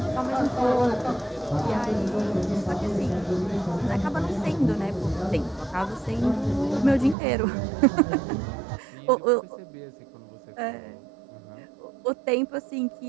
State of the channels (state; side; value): drops out; left; at 7.2 s